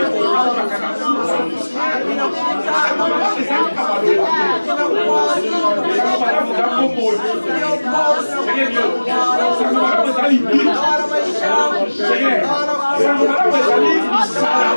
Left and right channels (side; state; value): both; inverted; correlation -1.00